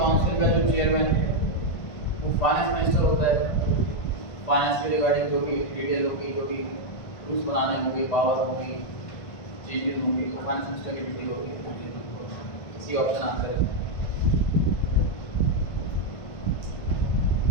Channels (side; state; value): right; late; 1.5 ms